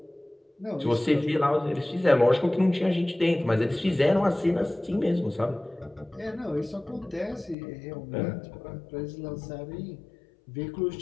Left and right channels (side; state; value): right; drops out; at 7.6 s